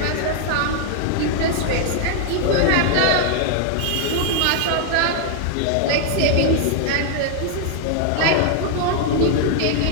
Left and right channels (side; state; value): both; different; correlation 0.00